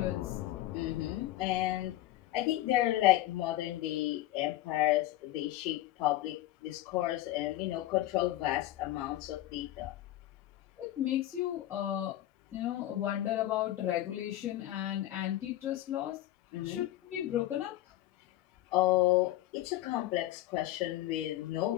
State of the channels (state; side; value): quieter; right; 14.9 dB